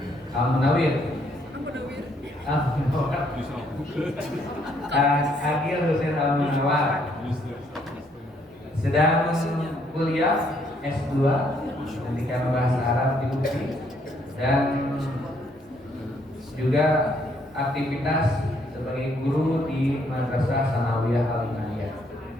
Al-Munawir. Akil Hussein Al-Munawar sedang kuliah S2 pendidikan bahasa Arab di UPI dan juga aktivitas sebagai guru di Madrasah Sanawiyah Al-Imaniyah.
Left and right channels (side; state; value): both; normal; correlation 0.69